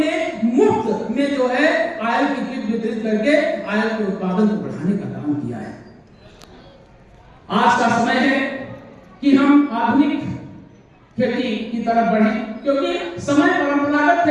मुफ्त में जो है आयल की किट वितरित करके आयल के उत्पादन को बढ़ाने का काम किया है। आज का समय है कि हम आधुनिक खेती की तरफ बढ़ें, क्योंकि समय परंपरागत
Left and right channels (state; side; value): identical; both; correlation 1.00